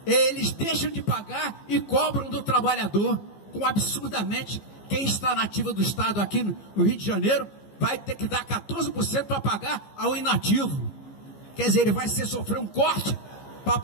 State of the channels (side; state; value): right; late; 15 ms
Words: Eles deixam de pagar e cobram do trabalhador, com absurdamente, quem está na ativa do Estado aqui no Rio de Janeiro vai ter que dar 14% para pagar ao inativo. Quer dizer, ele vai sofrer um corte para